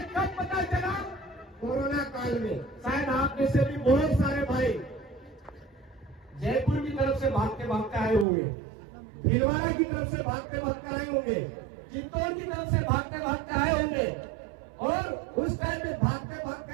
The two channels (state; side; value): drops out; left; at 8.2 s